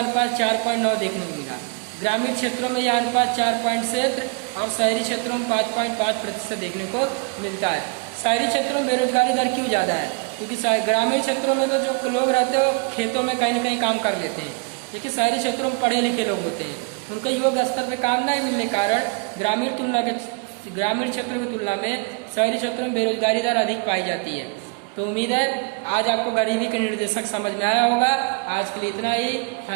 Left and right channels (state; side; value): quieter; left; 30.5 dB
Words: 4.9 देखने को मिला। ग्रामीण क्षेत्रों में यह अनुपात 4.7 और शहरी क्षेत्रों में 5.5% देखने को मिलता है। शहरी क्षेत्रों में बेरोजगारी दर क्यों ज़्यादा है, क्योंकि ग्रामीण क्षेत्रों में तो जो लोग रहते हैं वो खेतों में कहीं ना कहीं काम कर लेते हैं, लेकिन शहरी क्षेत्रों में पढ़े लिखे लोग होते हैं, उनके योग्य स्तर पर काम नहीं मिलने के कारण ग्रामीण क्षेत्रों की तुलना में शहरी क्षेत्रों में बेरोजगारी दर अधिक पाई जाती है। तो उम्मीद है आज आपको गरीबी के निर्देशक समझ में आया होगा। आज के लिए इतना ही।